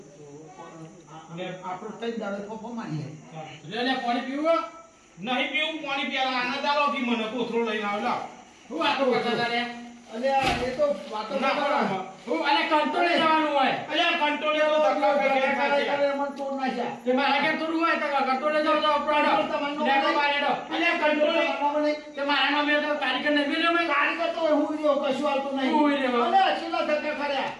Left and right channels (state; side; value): identical; both; correlation 1.00